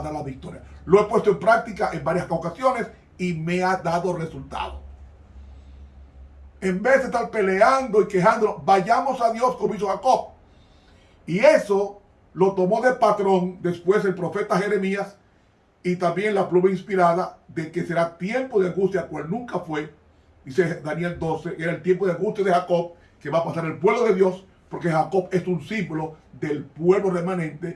dar la victoria. Lo he puesto en práctica en varias ocasiones y me ha dado resultado. En vez de estar peleando y quejándonos, vayamos a Dios como hizo Jacob. Y eso lo tomó de patrón después el profeta Jeremías, y también la pluma inspirada de que será tiempo de angustia, cual nunca fue. Dice Daniel 12, era el tiempo de angustia de Jacob, que va a pasar el pueblo de Dios, porque Jacob es un símbolo del pueblo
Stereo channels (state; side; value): identical; both; correlation 1.00